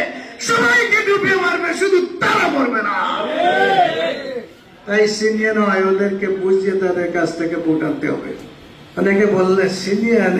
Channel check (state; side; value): identical; both; correlation 1.00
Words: সবাইকে ডুবিয়ে মারবে, শুধু তারা মরবে না। তাই সিনিয়র নয়, ওদেরকে বুঝিয়ে তাদের কাছ থেকে ভোট আনতে হবে। অনেকে বললে সিনিয়র